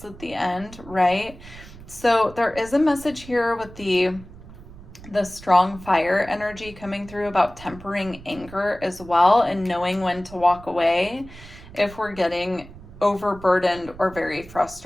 at the end, right? So there is a message here with the strong fire energy coming through about tempering anger as well and knowing when to walk away if we're getting overburdened or very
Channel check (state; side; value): noise; right; rumble, 18 dB below the sound